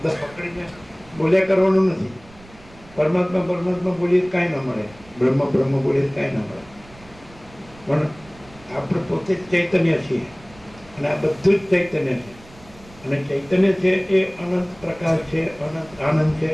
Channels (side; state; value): right; noise; rumble, 23 dB below the sound